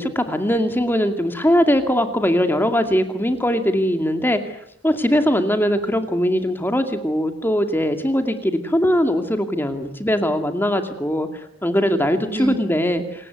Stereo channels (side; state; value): both; normal; correlation 0.83